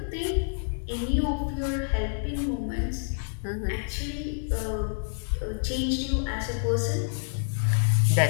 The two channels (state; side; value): silent; right; digital silence